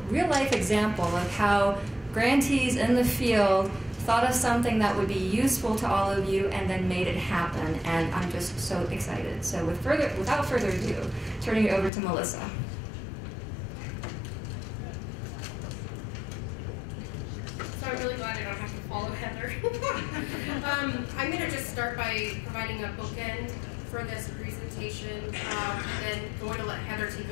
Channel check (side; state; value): right; drops out; at 11.9 s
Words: life example of how grantees in the field thought of something that would be useful to all of you and then made it happen, and I'm just so excited. So without further ado, turning it over to Melissa. So I'm really glad I don't have to follow Heather. I'm going to just start by providing a bookend for this presentation, then going to let Heather take